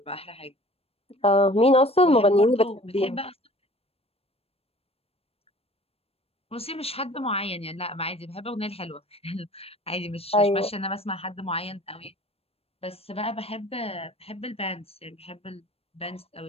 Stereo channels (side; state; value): right; late; 0.28 ms